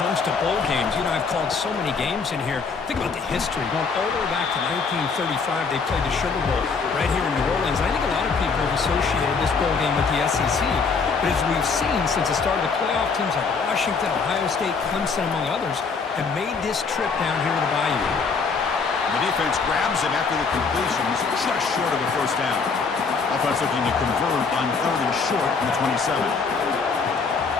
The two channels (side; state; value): right; quieter; 5.0 dB